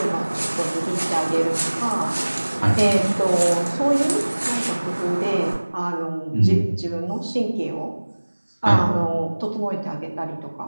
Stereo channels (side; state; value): both; inverted; correlation -1.00